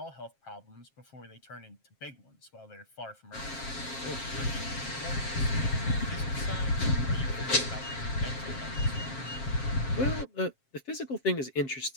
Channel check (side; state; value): right; late; 7.5 ms